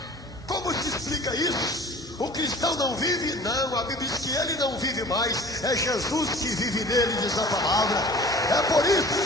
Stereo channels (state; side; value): normal; both; correlation 0.44